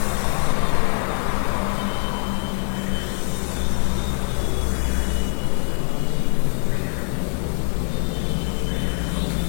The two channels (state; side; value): silent; right; 55 dB below the other